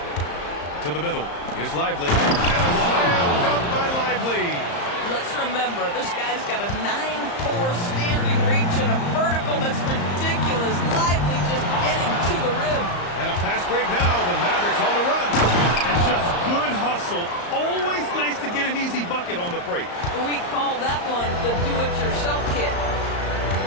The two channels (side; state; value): right; late; 34 ms